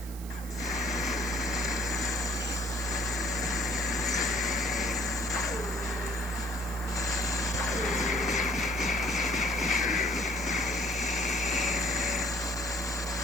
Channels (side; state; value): right; noise; hiss, 16 dB below the sound